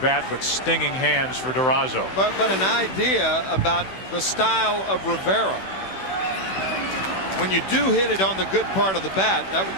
but stinging hands for Durazo. But an idea about the style of Rivera. When you do hit it on the good part of the bat,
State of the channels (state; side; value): late; right; 16 ms